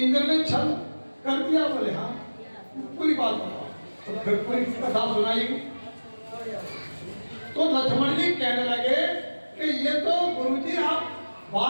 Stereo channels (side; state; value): both; inverted; correlation -1.00